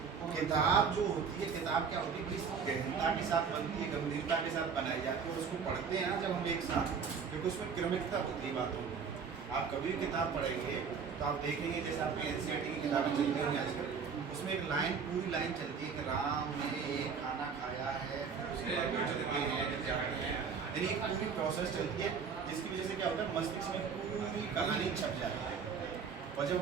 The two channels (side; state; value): left; quieter; 6.0 dB